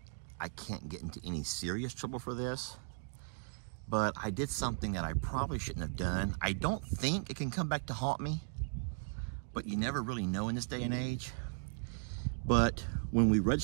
I can't get into any serious trouble for this, but I did something that I probably shouldn't have done. I don't think it can come back to haunt me, but you never really know in this day and age. But when we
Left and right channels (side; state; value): left; silent; digital silence